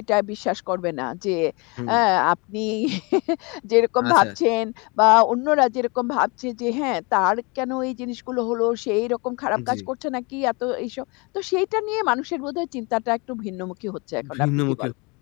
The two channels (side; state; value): right; quieter; 29.0 dB